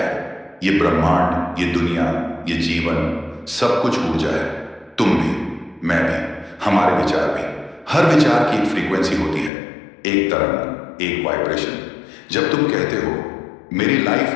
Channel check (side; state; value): right; drops out; at 9.5 s